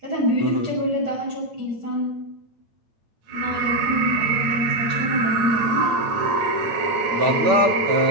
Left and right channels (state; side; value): late; left; 8.9 ms